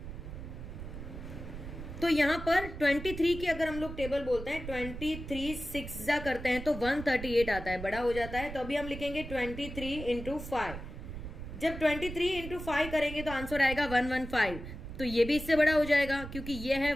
तो यहां पर 23 की अगर हम लोग टेबल बोलते हैं 23 6 जा करते हैं तो 138 आता है, बड़ा हो जाता है. तो अभी हम लिखेंगे 23 इंटू 5. जब 23 इंटू 5 करेंगे तो आंसर आएगा 115. तो ये भी इससे बड़ा हो जाएगा क्योंकि ये है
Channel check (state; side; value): noise; right; rumble, 10 dB below the sound